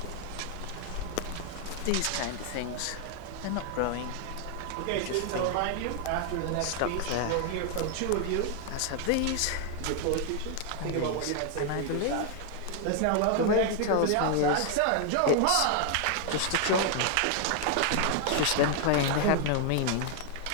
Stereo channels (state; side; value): different; both; correlation 0.00